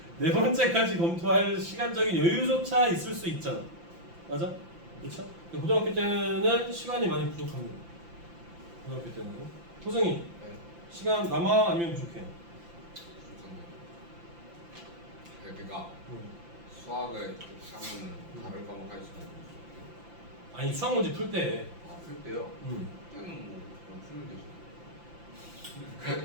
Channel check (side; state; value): left; late; 5.8 ms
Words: 네 번째까지 검토할 시간적인 여유조차 있을 수 있잖아. 맞아? 그렇죠? 고등학교 때는 시간이 많이 부족합니다. 고등학교 때는. 호승이 네. 시간 남아 아니면 부족해? 그러니까 수학을 하면 다른 과목 할 수가 있어요. 아니 수학 문제 풀 때. 풀 때요? 그때는 뭐 그냥 풀면 되죠.